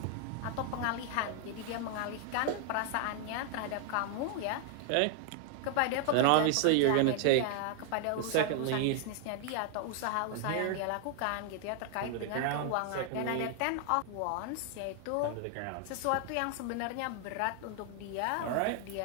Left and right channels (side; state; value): both; different; correlation 0.00